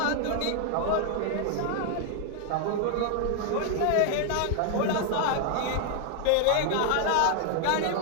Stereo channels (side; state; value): both; different; correlation 0.00